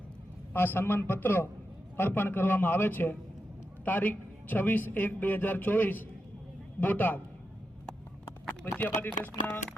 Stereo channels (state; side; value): normal; both; correlation 0.87